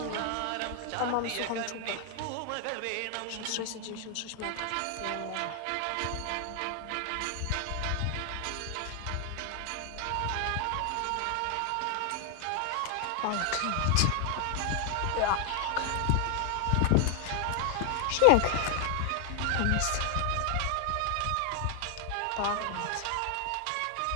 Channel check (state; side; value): different; both; correlation 0.00